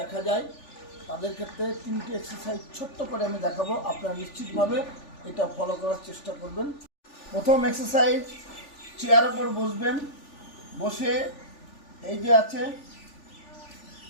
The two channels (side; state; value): right; late; 3.4 ms